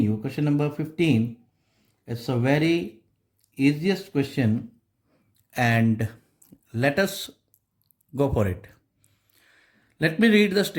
question number 15. It's a very easiest question, and let us go for it. Let me read the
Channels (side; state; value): both; identical; correlation 1.00